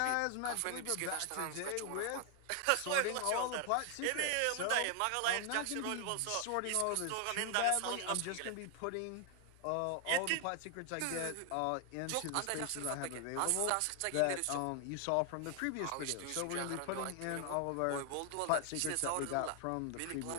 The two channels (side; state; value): both; different; correlation 0.00